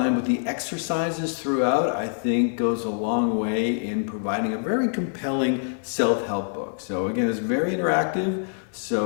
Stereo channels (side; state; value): right; silent; 60 dB below the other